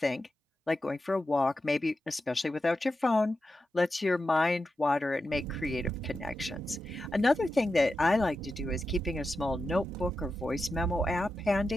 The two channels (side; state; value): both; normal; correlation 0.90